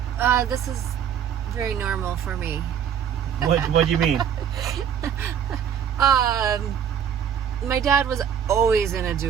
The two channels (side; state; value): left; quieter; 8.5 dB